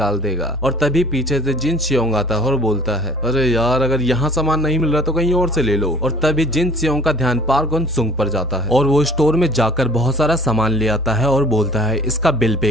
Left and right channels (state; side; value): normal; both; correlation 0.50